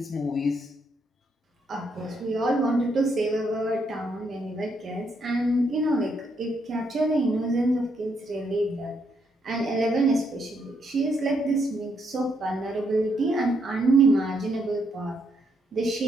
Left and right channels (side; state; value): both; normal; correlation 0.76